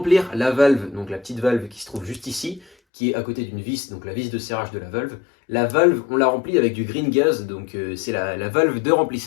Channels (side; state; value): right; drops out; at 2.7 s